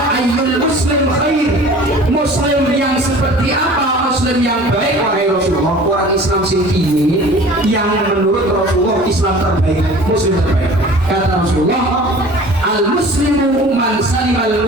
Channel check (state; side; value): normal; both; correlation 0.44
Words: ayyul muslim khair, muslim yang seperti apa, muslim yang baik? Wahai Rasulullah, orang Islam sing ini yang menurut Rasulullah Islam terbaik, muslim terbaik. Kata Rasulullah, al-muslimu man salimal